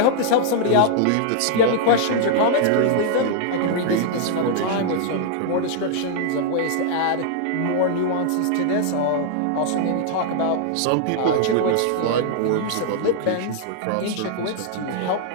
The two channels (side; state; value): both; different; correlation -0.01